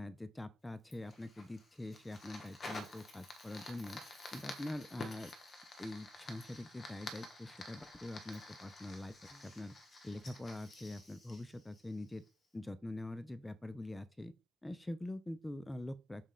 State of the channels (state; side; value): normal; both; correlation 0.95